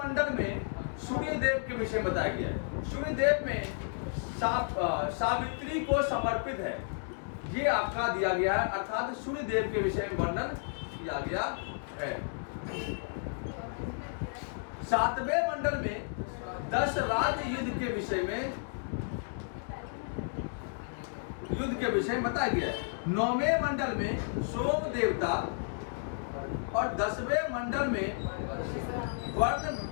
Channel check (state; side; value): silent; right; digital silence